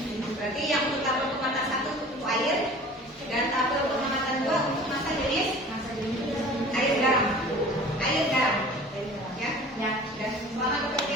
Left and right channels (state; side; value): normal; both; correlation 0.44